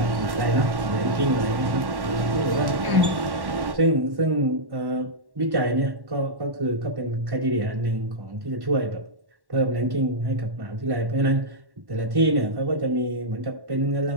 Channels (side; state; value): left; late; 1.1 ms